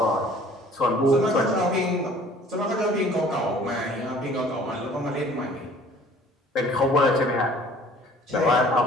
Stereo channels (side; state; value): both; normal; correlation 0.52